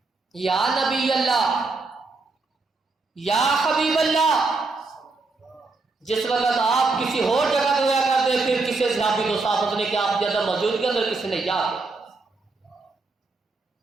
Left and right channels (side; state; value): left; quieter; 3.8 dB